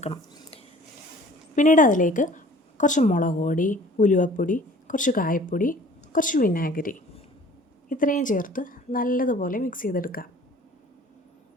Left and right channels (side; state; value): both; normal; correlation 0.49